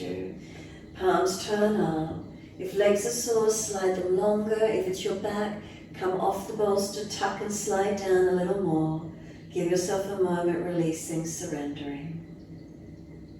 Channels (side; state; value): both; identical; correlation 1.00